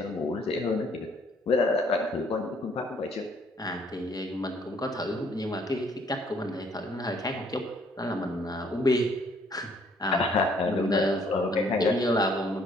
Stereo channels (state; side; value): normal; both; correlation 0.63